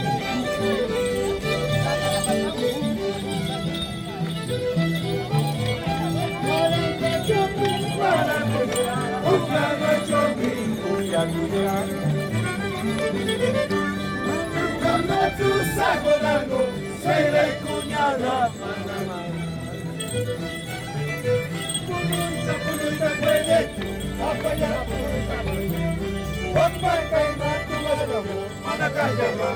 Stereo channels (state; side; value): identical; both; correlation 1.00